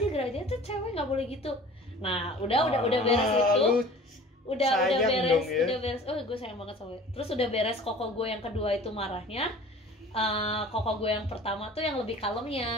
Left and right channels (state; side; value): normal; both; correlation 0.45